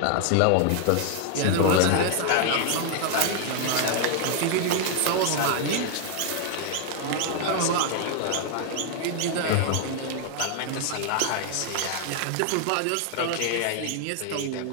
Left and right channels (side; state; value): both; different; correlation 0.00